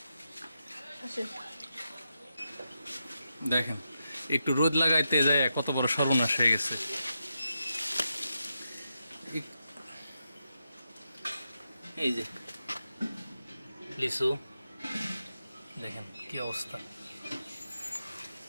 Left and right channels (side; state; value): both; inverted; correlation -0.86